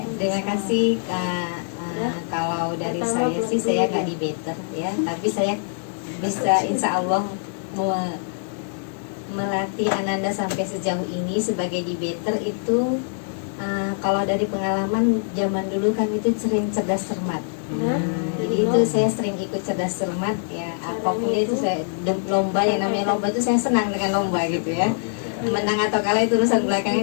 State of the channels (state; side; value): silent; right; 63 dB below the other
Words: terima kasih Kak. Kalau dari saya sih saya nggak debater ya, tapi saya bisa insya Allah melatih Ananda sampai sejauh ini sebagai debater itu. Kalau dari pengalaman zaman dulu kan itu sering cerdas cermat. Jadi itu saya sering ikut cerdas cermat ya. Apapun itu saya lomba, yang namanya lomba itu saya senang dengan lomba gitu ya. Menang atau kalah itu urusan belakangan,